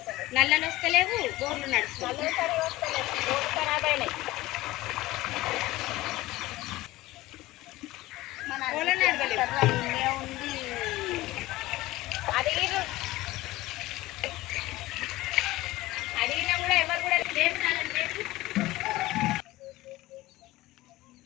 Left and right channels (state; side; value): quieter; right; 18.0 dB